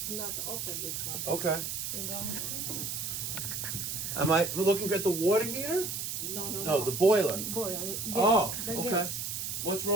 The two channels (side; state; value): right; noise; hiss, 3 dB below the sound